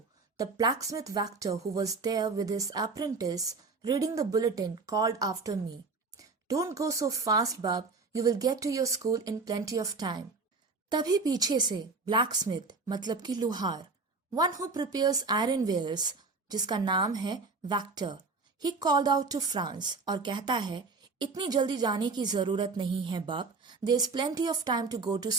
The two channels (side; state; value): left; quieter; 4.2 dB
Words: the blacksmith Vactor who was there with his apprentice reading the bulletin called after me. Don't go so fast, Bub. You will get to your school in plenty of time. तभी पीछे से blacksmith मतलब कि लोहार, one who prepares iron wares, जिसका नाम है Vactor, he called out to Franz और कहता है इतनी जल्दी जाने की जरूरत नहीं है बब. There's plenty of time to go to